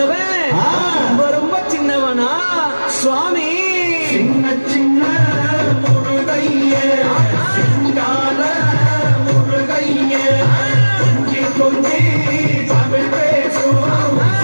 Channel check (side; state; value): both; inverted; correlation -1.00